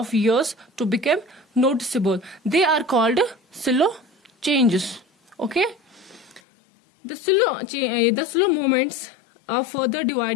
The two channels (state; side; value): drops out; right; at 6.4 s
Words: years to become noticeable. They are called slow changes. Okay, the slow movements are further